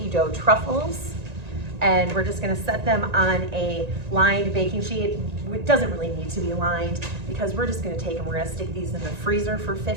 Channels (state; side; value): late; left; 1.9 ms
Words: dough truffles, and we're just gonna set them on a lined baking sheet. It doesn't really need to be lined because we're just gonna take and we're gonna stick these in the freezer for